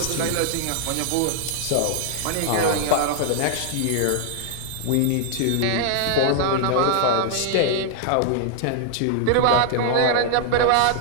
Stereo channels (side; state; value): both; different; correlation 0.00